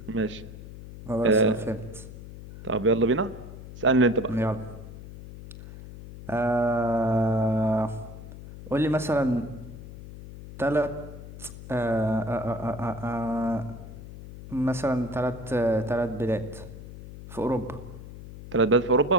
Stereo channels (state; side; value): noise; left; hum, 14 dB below the sound